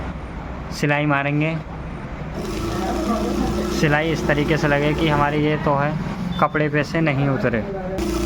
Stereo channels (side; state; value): both; identical; correlation 1.00